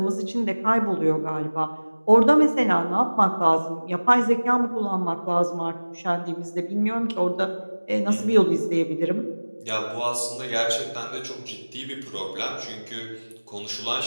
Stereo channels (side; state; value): both; inverted; correlation -1.00